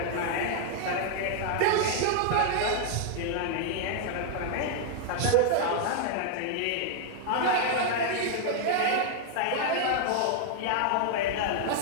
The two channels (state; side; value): different; both; correlation 0.00